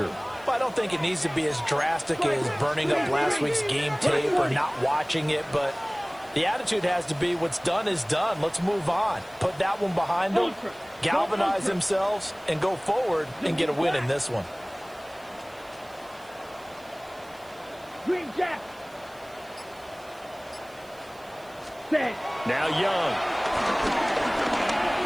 Well, I don't think it needs to be as drastic as burning up last week's game tape or not watching it, but the attitude has to be what's done is done. Let's move on. Put that one behind them, galvanize themselves, and go forward and get a win in this one. Green Jack. Now Young.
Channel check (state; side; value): noise; right; hiss, 26 dB below the sound